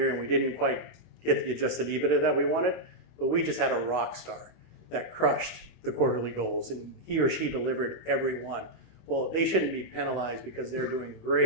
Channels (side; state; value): right; late; 25 ms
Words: and we didn't quite get the adjusted EBITDA that we wanted, but we just had a rock star that crushed the quarterly goals and he or she delivered every one. Well, they shouldn't be penalized because they're doing